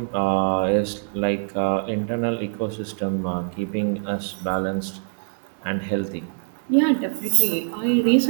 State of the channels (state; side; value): silent; left; digital silence